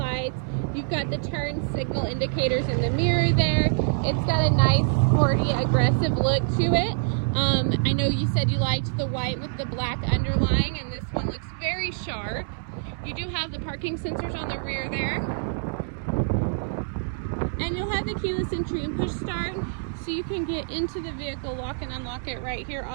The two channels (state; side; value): silent; left; 61 dB below the other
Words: You've got the turn signal indicators in the mirror there. It's got a nice, sporty, aggressive look to it. I know you said you liked the white with the black underlying, and this one looks very sharp. You do have the parking sensors on the rear there. And you'll have the keyless entry and push start, so you can get into the vehicle, lock and unlock it right here